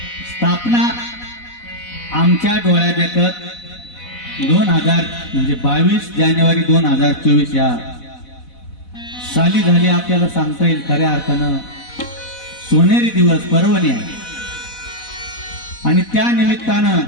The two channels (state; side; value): late; right; 4.1 ms